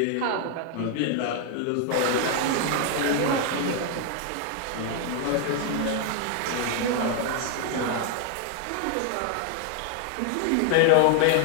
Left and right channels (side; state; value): both; different; correlation 0.00